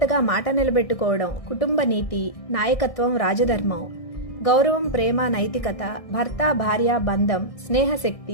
మాట నిలబెట్టుకోవడం, కుటుంబ నీతి, నాయకత్వం, రాజధర్మం, గౌరవం, ప్రేమ, నైతికత, భర్త భార్య బంధం,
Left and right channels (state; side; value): late; right; 1.6 ms